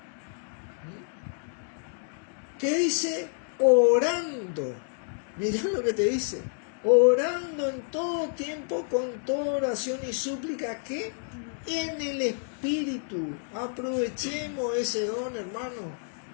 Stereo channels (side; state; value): right; silent; 59 dB below the other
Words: ¿Qué dice? Orando. Mirá lo que te dice. Orando en todo tiempo con toda oración y súplica, ¿qué? En el Espíritu. Aprovechemos ese don, hermano.